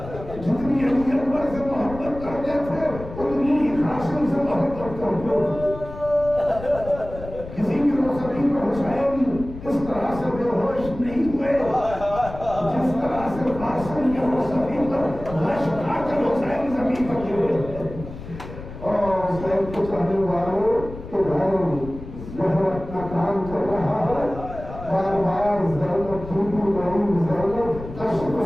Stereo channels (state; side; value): noise; left; rumble, 13 dB below the sound